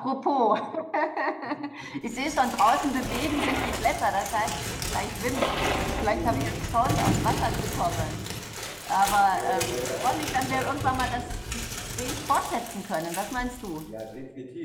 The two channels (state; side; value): identical; both; correlation 1.00